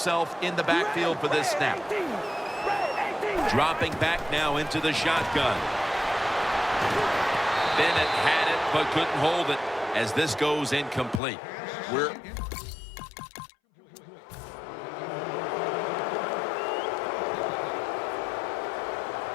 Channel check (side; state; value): right; drops out; at 11.2 s